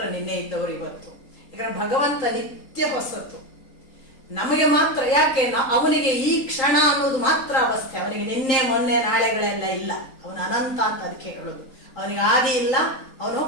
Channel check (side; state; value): right; late; 3.8 ms